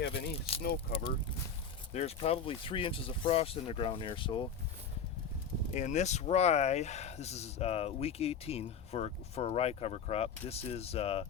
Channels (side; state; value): right; quieter; 6.1 dB